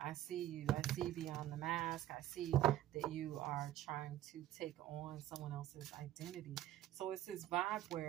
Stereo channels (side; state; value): left; quieter; 13.4 dB